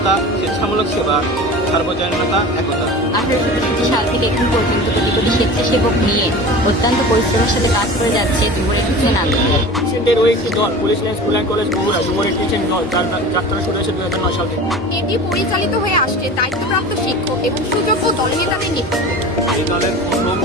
স্বেচ্ছামূলক সেবা, সার্বজনীনতা, একতা। 1863 সাল থেকে এখন পর্যন্ত কোটি কোটি স্বেচ্ছাসেবক নিয়ে অত্যন্ত পরিশ্রমের সাথে কাজ করে যাচ্ছে যুব রেড ক্রিসেন্ট আন্দোলন। ক্রিসেন্টের ওই একটি দল police line school and college Bogura যুব রেড ক্রিসেন্ট দল, যার যাত্রা শুরু হয়েছে 2009 সাল থেকে। এটি পরিচালিত হয়ে আসছে দায়িত্বপ্রাপ্ত শিক্ষক এবং সুযোগ্য দলনেতাদের নেতৃত্বে। এই দলের প্রথম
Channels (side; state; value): both; normal; correlation 0.36